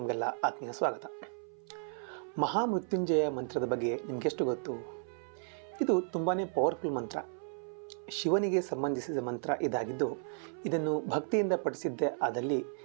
ಆತ್ಮೀಯ ಸ್ವಾಗತ. ಮಹಾಮೃತ್ಯುಂಜಯ ಮಂತ್ರದ ಬಗ್ಗೆ ನಿಮಗೆಷ್ಟು ಗೊತ್ತು? ಇದು ತುಂಬಾ ಪವರ್ಫುಲ್ ಮಂತ್ರ. ಶಿವನಿಗೆ ಸಂಬಂಧಿಸಿದ ಮಂತ್ರ ಇದಾಗಿದ್ದು, ಇದನ್ನು ಭಕ್ತಿಯಿಂದ ಪಠಿಸಿದ್ದೇ ಆದಲ್ಲಿ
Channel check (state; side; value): silent; left; 55 dB below the other